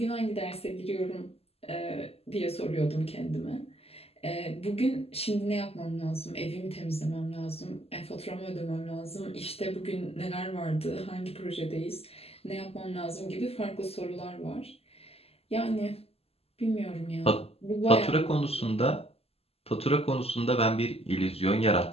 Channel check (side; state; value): right; late; 0.29 ms